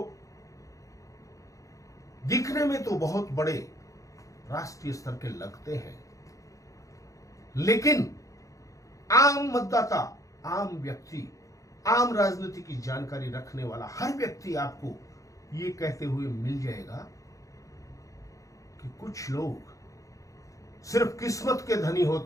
दिखने में तो बहुत बड़े राष्ट्रीय स्तर के लगते हैं, लेकिन आम मतदाता, आम व्यक्ति, आम राजनीति की जानकारी रखने वाला हर व्यक्ति आपको ये कहते हुए मिल जाएगा कि कुछ लोग सिर्फ किस्मत के धनी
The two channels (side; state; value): right; late; 0.16 ms